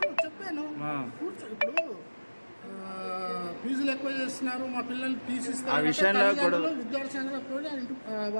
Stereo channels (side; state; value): both; inverted; correlation -1.00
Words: చెప్పాను, ఇప్పుడు ఫీజులు ఎక్కువ చేస్తున్నారు, మా పిల్లల్ని తీసిస్తారు, ఆ విషయంలో కూడా విద్యార్థి సంఘాలకు కూడా